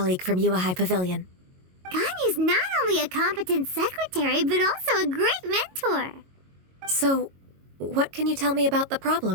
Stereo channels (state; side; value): late; left; 22 ms